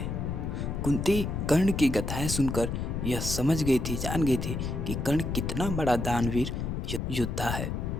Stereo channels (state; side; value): noise; left; rumble, 3 dB below the sound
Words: कुंती कर्ण की गाथाएं सुनकर यह समझ गई थी, जान गई थी कि कर्ण कितना बड़ा दानवीर योद्धा है।